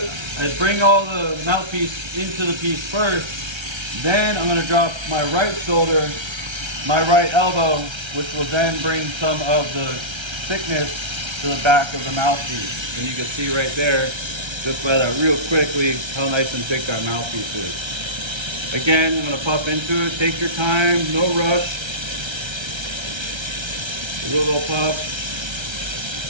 bring all the mouthpiece into the piece first. Then I'm going to drop my right shoulder, my right elbow, which will then bring some of the thickness to the back of the mouthpiece. And you can see right there, just by that real quickly, how nice and thick that mouthpiece is. Again, I'm going to puff into it. Take your time, no rush. A little puff.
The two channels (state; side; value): late; left; 1.3 ms